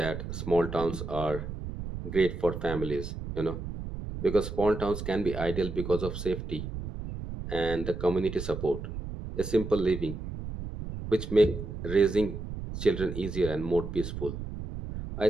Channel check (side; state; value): right; noise; rumble, 7 dB below the sound